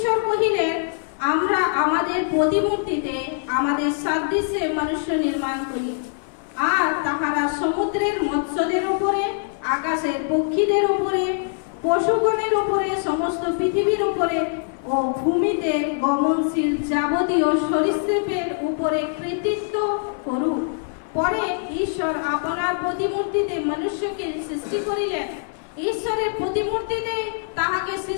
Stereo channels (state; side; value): silent; right; 56 dB below the other